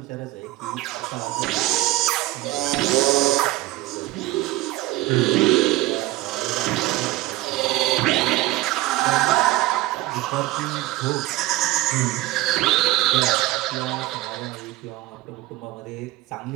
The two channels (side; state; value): left; quieter; 17.6 dB